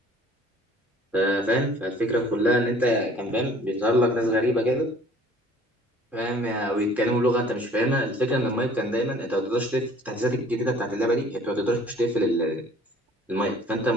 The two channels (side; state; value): both; normal; correlation 0.52